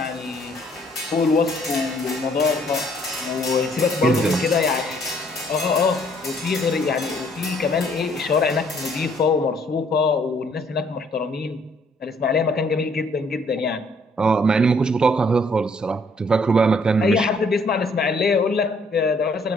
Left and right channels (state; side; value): normal; both; correlation 0.64